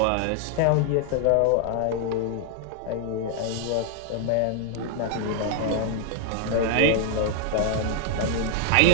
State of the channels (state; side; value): different; both; correlation 0.00